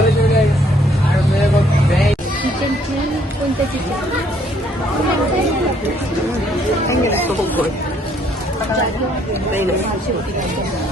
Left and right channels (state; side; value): normal; both; correlation 0.66